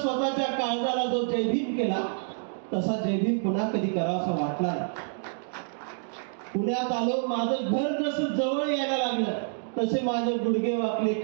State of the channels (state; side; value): silent; left; digital silence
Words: काळजाला जो जयभीम केला तसा जयभीम पुन्हा कधी करावासा वाटला नाही. पुण्यात आलो, माझं घर जसं जवळ यायला लागलं तसे माझे गुडघे वाकले,